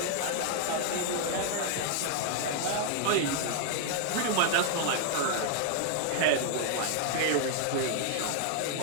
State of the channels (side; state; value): both; different; correlation 0.00